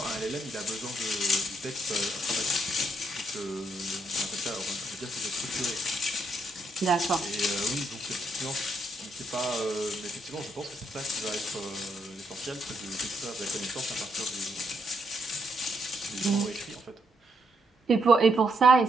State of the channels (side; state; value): both; normal; correlation 0.76